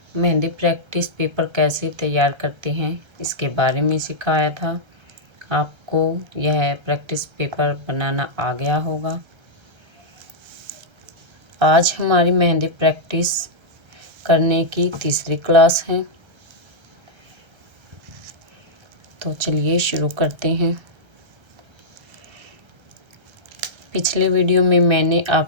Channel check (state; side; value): late; left; 1.3 ms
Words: मेहंदी प्रैक्टिस पेपर कैसे तैयार करते हैं इसके बारे में सिखाया था। आपको यह प्रैक्टिस पेपर बनाना आ गया होगा। आज हमारी मेहंदी प्रैक्टिस करने की तीसरी क्लास है। तो चलिए शुरू करते हैं। पिछले वीडियो में मैंने